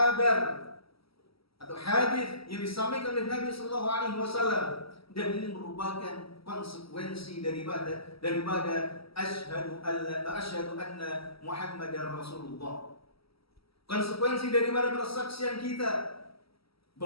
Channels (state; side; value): late; right; 0.75 ms